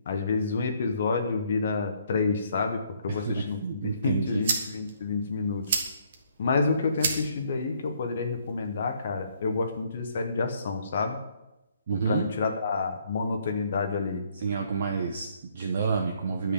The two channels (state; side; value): inverted; both; correlation -0.67